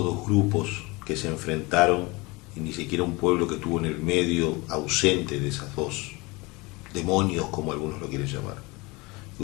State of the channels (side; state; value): right; quieter; 24.6 dB